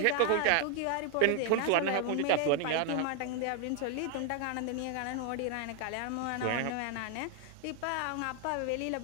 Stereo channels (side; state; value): both; different; correlation 0.00